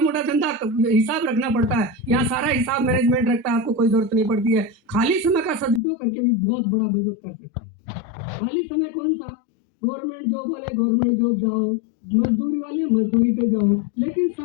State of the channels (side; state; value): right; drops out; at 5.8 s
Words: मोटा धंधा हिसाब रखना पड़ता है, यहाँ सारा हिसाब मैनेजमेंट रखता है, आपको कोई जरूरत नहीं पड़ती है। खाली समय का सदुपयोग करके भी बहुत बड़ा बिजनेस कर सकते हैं। खाली समय कौन सा? गवर्नमेंट जॉब वाले गवर्नमेंट जॉब जाओ, मजदूरी वाले मजदूरी पे जाओ, लेकिन